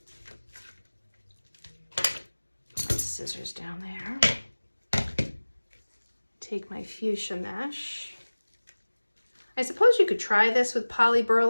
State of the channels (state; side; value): inverted; both; correlation -1.00